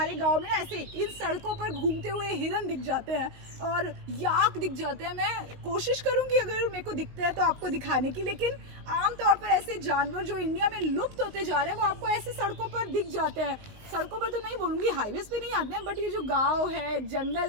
गांव में ना ऐसे इन सड़कों पर घूमते हुए हिरन दिख जाते हैं और याक दिख जाते हैं। मैं कोशिश करूंगी अगर मेरे को दिखते हैं तो आपको दिखाने की, लेकिन आमतौर पर ऐसे जानवर जो इंडिया में लुप्त होते जा रहे हैं वो आपको ऐसे सड़कों पर दिख जाते हैं। सड़कों पर तो नहीं बोलूँगी, हाईवेज पे नहीं आते हैं, बट ये जो गांव है,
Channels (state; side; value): late; left; 19 ms